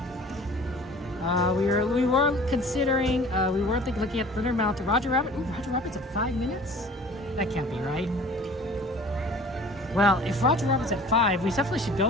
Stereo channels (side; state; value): both; normal; correlation 0.46